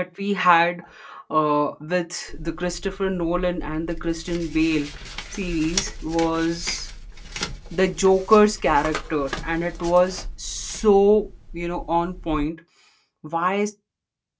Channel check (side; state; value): both; identical; correlation 1.00